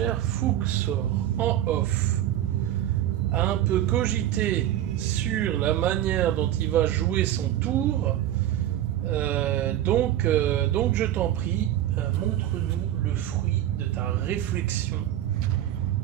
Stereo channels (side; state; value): left; quieter; 12.4 dB